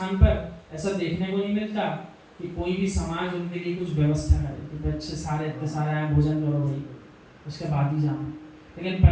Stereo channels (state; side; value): identical; both; correlation 1.00